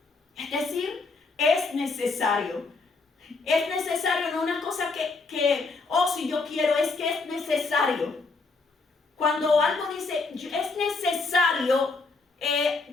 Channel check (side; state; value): right; quieter; 3.9 dB